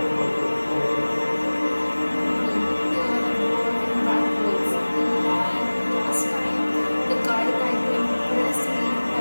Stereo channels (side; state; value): both; inverted; correlation -1.00